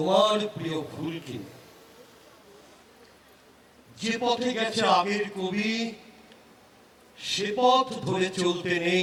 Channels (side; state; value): both; identical; correlation 1.00